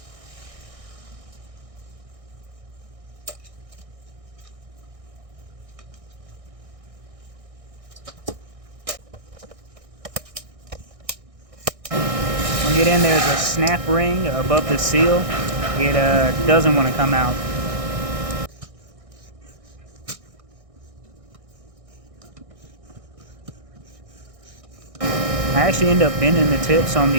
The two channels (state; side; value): late; left; 1.6 ms